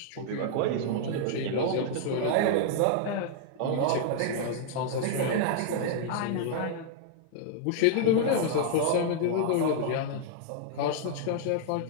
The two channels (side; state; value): both; different; correlation -0.01